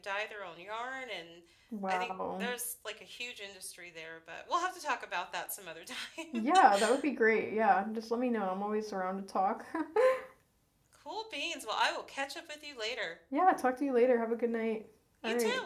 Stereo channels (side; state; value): both; identical; correlation 1.00